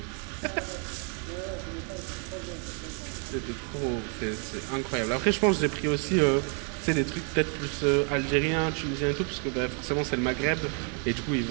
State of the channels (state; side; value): quieter; left; 39.6 dB